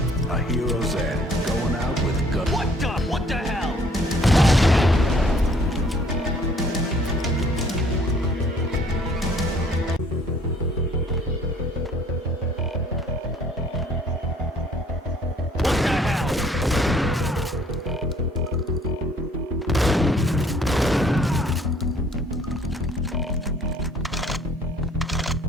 A hero's end. Going out with guns. What the hell?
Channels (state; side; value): normal; both; correlation 0.59